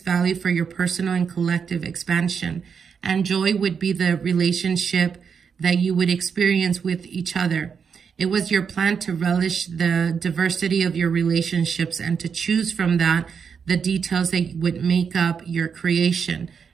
value for your personal and collective expansion. And joy would be the relationship that you would experience with each other. It was your plan to relish the diversity of your relationships and to choose from that the details that would make up your creation.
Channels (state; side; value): quieter; left; 6.5 dB